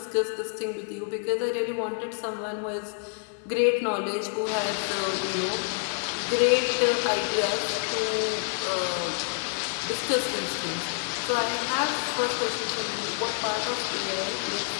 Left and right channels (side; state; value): right; silent; 60 dB below the other